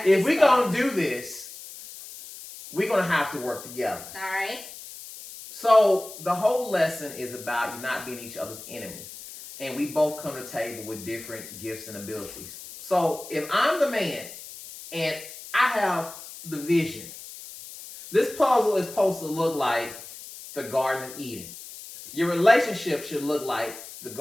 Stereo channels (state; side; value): noise; left; hiss, 14 dB below the sound